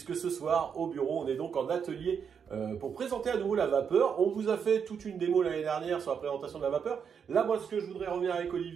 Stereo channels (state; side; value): quieter; left; 7.0 dB